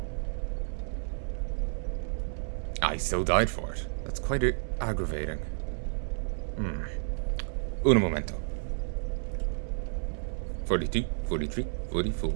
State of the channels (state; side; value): silent; left; digital silence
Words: I still died for it. That's quite aggravating. Uno momento. 42, 43,